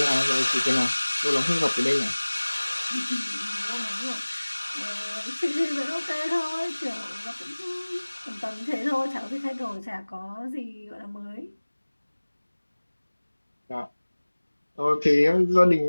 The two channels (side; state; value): both; inverted; correlation -1.00